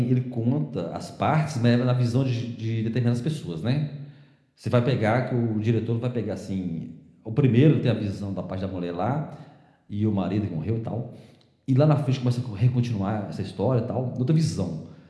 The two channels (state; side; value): identical; both; correlation 1.00